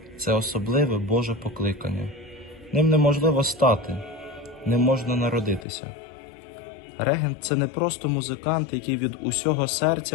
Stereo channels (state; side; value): drops out; right; at 5.7 s